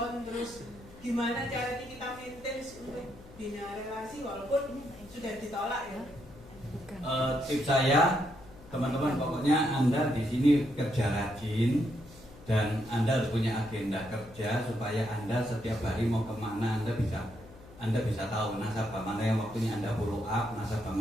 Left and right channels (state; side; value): noise; left; hum, 20 dB below the sound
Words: terus gimana caranya kita maintain untuk bina relasi walaupun sudah ditolak ya? Tips saya, teman-teman, pokoknya Anda di sini kerja rajin dan Anda harus punya agenda kerja supaya Anda setiap hari mau kemana Anda bisa tahu nasabah mana yang waktunya Anda follow up, nasabah